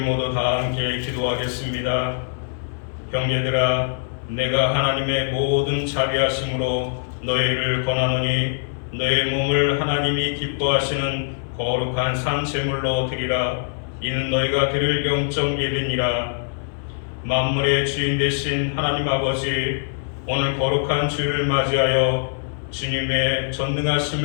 다 함께 기도하겠습니다. 형제들아, 내가 하나님의 모든 자비하심으로 너희를 권하노니 너희 몸을 하나님이 기뻐하시는 거룩한 산제물로 드리라. 이는 너희가 드릴 영적 예배니라. 만물의 주인 되신 하나님 아버지, 오늘 거룩한 주일을 맞이하여 주님의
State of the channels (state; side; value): silent; right; digital silence